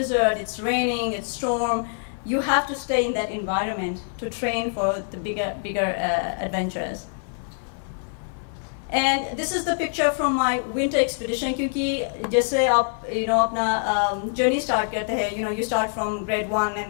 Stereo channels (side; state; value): right; silent; 62 dB below the other